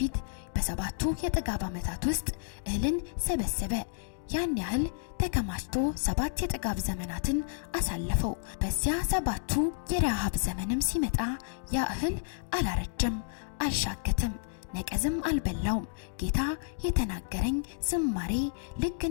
በ7ቱ የጥጋብ ዓመታት ውስጥ እህልን ሰበሰበ። ያን ያህል ተከማችቶ 7 የጥጋብ ዘመናትን አሳለፈው። በዚያ 7ቱ የረሃብ ዘመንም ሲመጣ ያ እህል አላረጀም፣ አልሻገተም፣ ነቀዝም አልበላውም። ጌታ የተናገረኝ ዝማሬ ልክ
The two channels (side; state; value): right; silent; digital silence